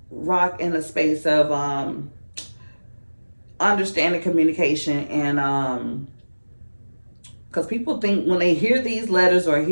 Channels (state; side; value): inverted; both; correlation -1.00